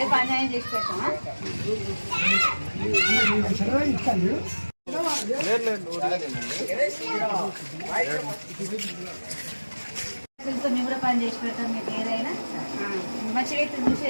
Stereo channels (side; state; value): both; inverted; correlation -1.00